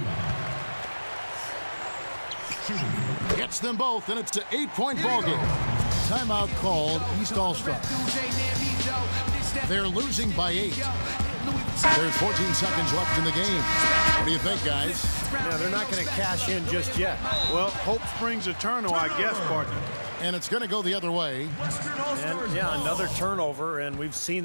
Gets them both, and it's an 8-point ball game. Timeout called East All-Stars. They're losing by 8. There's 14 seconds left in the game. What do you think, guys? Yeah, they're not going to cash in just yet. Well, hope springs eternal, I guess, partner. And it's going to go the other way. And, yeah, another turnover, and we've seen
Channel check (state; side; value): inverted; both; correlation -1.00